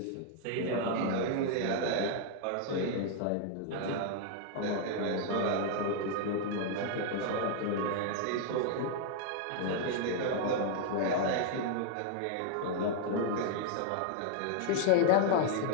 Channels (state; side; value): different; both; correlation 0.00